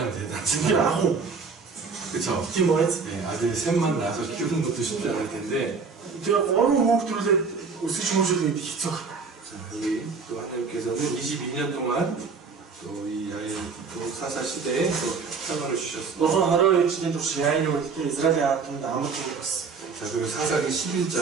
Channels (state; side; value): quieter; left; 5.0 dB